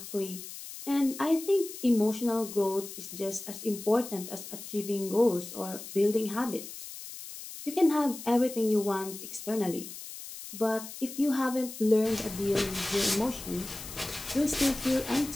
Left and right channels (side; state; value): left; noise; hiss, 12 dB below the sound